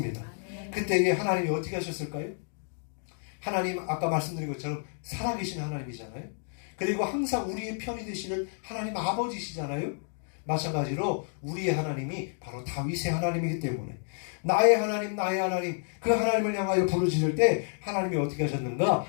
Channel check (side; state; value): right; silent; 58 dB below the other